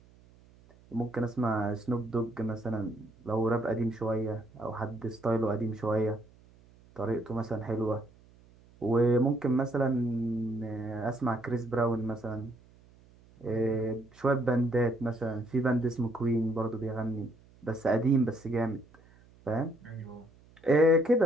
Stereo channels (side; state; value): right; noise; hum, 27 dB below the sound